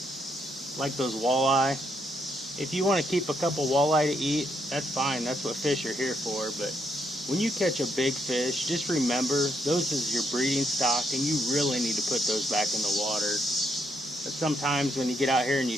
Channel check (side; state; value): both; normal; correlation 0.76